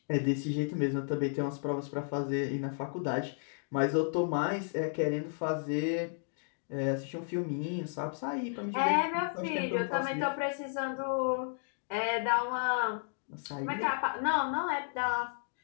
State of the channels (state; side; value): silent; right; digital silence